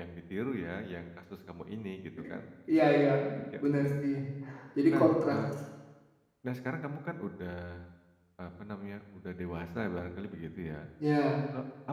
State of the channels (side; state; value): both; identical; correlation 1.00